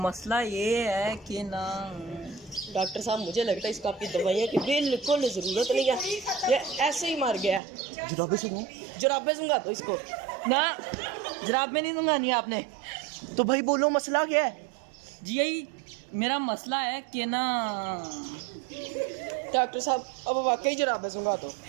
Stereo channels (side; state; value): left; drops out; at 7.6 s